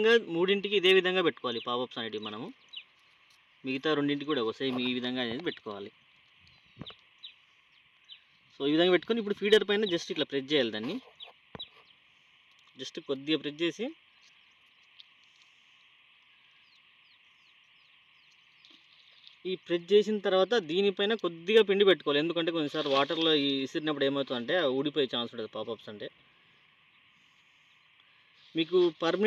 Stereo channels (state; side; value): identical; both; correlation 1.00